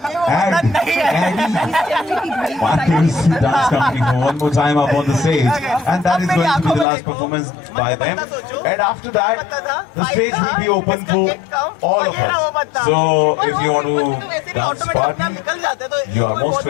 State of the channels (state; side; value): drops out; right; at 6.9 s